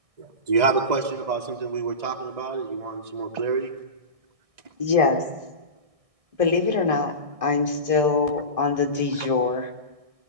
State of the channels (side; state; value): left; late; 1.6 ms